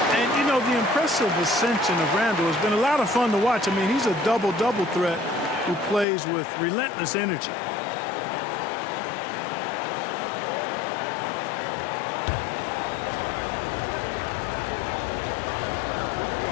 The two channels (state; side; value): drops out; right; at 6.1 s